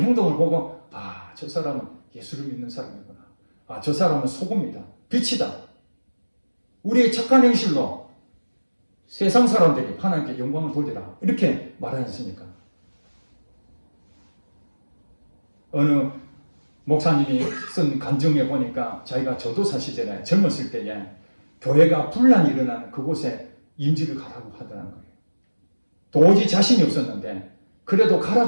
행동을 보고 아, 저 사람은 예수를 믿는 사람이구나. 아, 저 사람은 소금이다. 빛이다. 우리의 착한 행실로 세상 사람들이 하나님께 영광을 돌리라. 이렇게 말하지 않습니까? 어느 목사님이 쓴 간증에 보니까 자기가 전도사 시절에 젊었을 때에 교회가 분란이 일어나는 그곳에 임직을 가라고 하더라는 거예요. 도저히 자신이 없었는데 그래도 가라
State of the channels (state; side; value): inverted; both; correlation -1.00